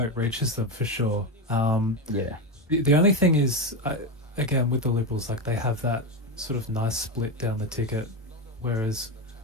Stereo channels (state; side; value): normal; both; correlation 0.14